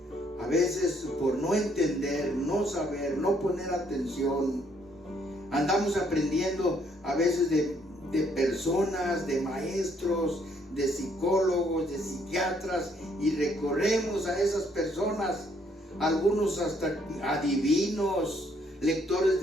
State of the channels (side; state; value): both; normal; correlation 0.68